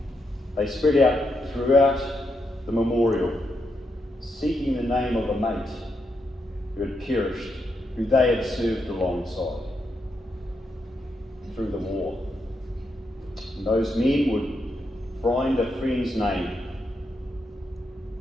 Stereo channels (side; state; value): both; normal; correlation 0.82